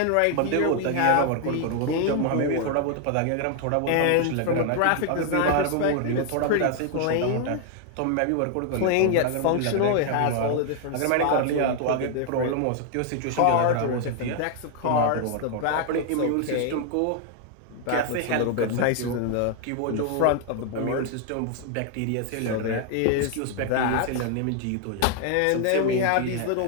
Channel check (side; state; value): both; different; correlation 0.00